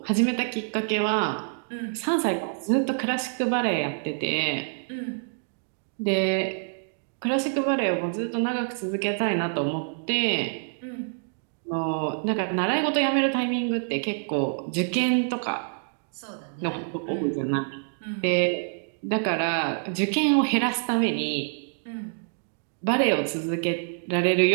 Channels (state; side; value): silent; left; digital silence